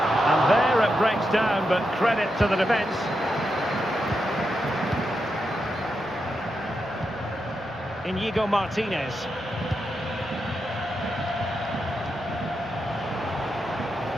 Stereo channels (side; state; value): both; normal; correlation 0.86